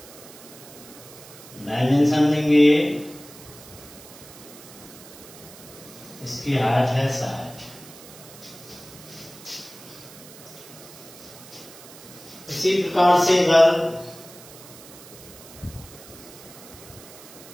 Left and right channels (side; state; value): right; noise; hiss, 18 dB below the sound